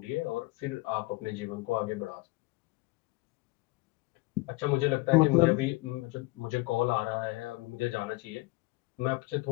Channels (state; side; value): quieter; right; 22.3 dB